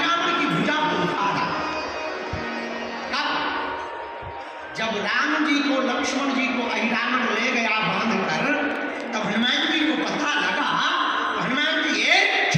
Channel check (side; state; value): both; identical; correlation 1.00